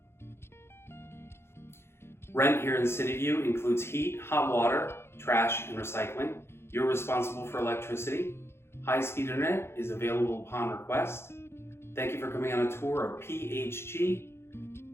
Rent here in Cityview includes heat, hot water, trash, and recycling. You're responsible for electricity. High-speed internet is available upon request. Thank you for coming on a tour of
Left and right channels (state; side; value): late; right; 0.12 ms